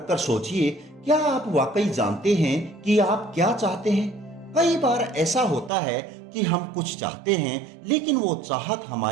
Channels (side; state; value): left; drops out; at 5.7 s